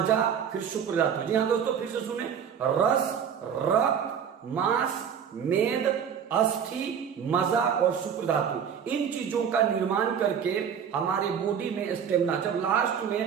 फिर शुक्र धातु। जी हाँ दोस्तों, फिर से सुने, रस, रक्त, मांस, मेद, अस्थि, मज्जा और शुक्र धातु, इन चीजों का निर्माण करके हमारे बॉडी में स्टेमिना, जब लास्ट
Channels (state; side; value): quieter; left; 7.8 dB